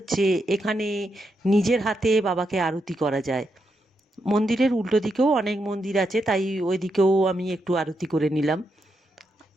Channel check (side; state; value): both; normal; correlation 0.83